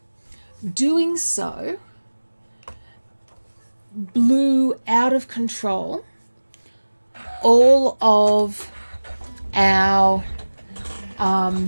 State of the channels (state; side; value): inverted; both; correlation -1.00